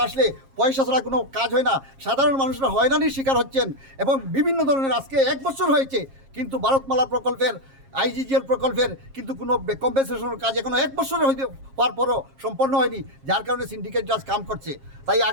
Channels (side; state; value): left; late; 7.4 ms